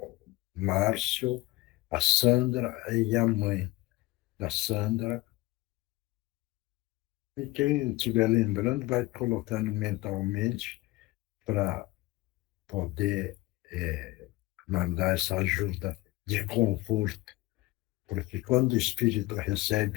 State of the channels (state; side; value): quieter; right; 20.1 dB